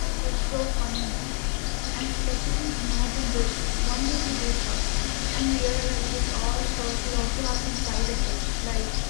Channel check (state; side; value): quieter; right; 38.5 dB